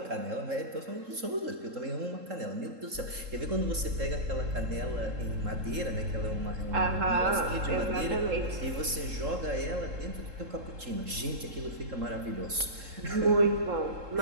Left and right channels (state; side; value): late; left; 3.7 ms